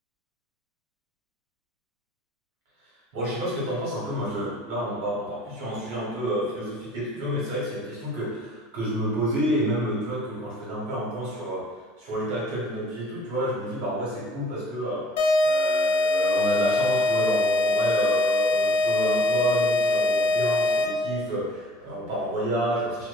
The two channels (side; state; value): both; normal; correlation 0.52